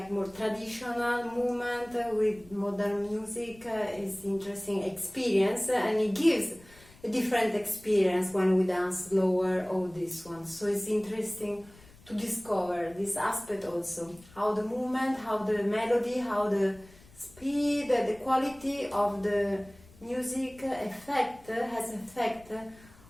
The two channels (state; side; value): noise; left; rumble, 24 dB below the sound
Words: more traditional movement with modern music is interesting experience, and it gives a different experience when we dance slower or this one. So it's interesting to discover this aspect also, how the movement, how the melody, how the speed, the quality of the music has effect